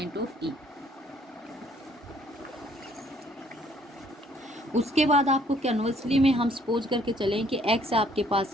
of E. उसके बाद आपको कन्वर्सली में हम सपोज करके चलें कि x आपके पास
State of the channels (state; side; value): normal; both; correlation 0.63